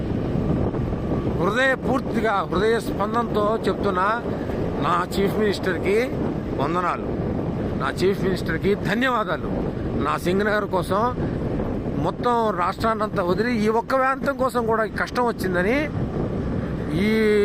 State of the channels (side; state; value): both; identical; correlation 1.00